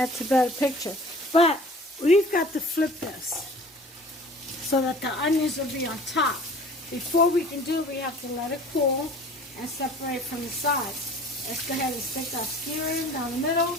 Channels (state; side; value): normal; both; correlation 0.46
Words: a better picture. But we've got to flip this so that the onions will be on top. Before we can do it, we have to let it cool and separate from the sides. Let's go ahead and stick our skewer in down the middle.